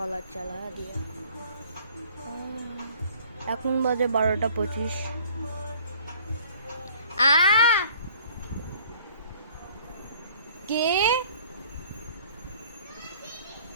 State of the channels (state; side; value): inverted; both; correlation -0.54